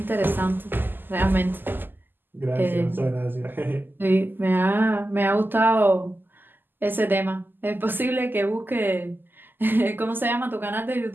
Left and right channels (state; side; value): late; left; 0.092 ms